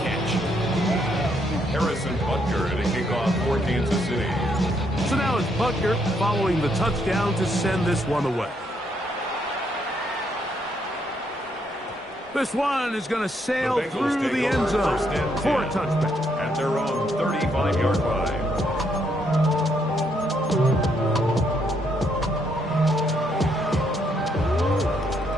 catch. Harrison Butker to kick off for Kansas City. So now it's Butker following the touchdown to send this one away. This one is going to sail through the end zone for a touchback. At their own 35-yard line.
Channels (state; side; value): normal; both; correlation 0.74